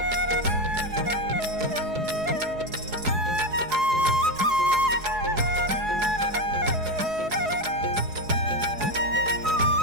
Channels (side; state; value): left; late; 4.7 ms